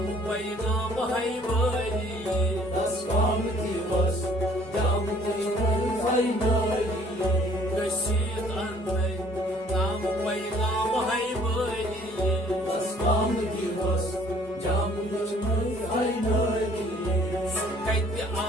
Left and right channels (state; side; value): normal; both; correlation 0.57